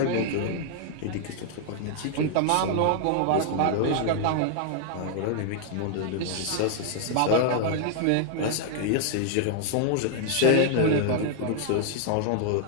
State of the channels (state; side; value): different; both; correlation 0.00